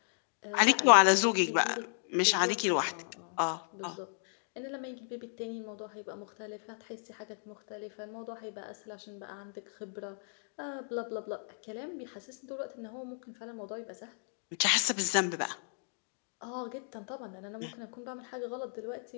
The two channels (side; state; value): right; silent; 55 dB below the other